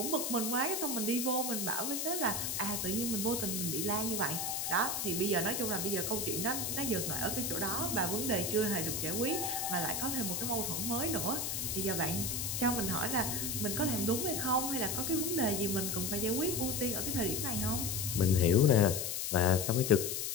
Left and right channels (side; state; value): left; noise; hiss, 1 dB below the sound